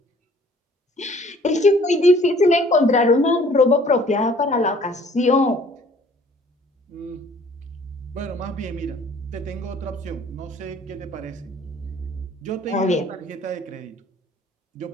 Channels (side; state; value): both; normal; correlation 0.55